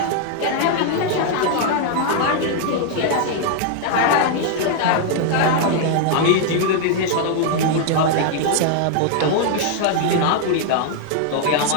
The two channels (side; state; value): both; different; correlation 0.00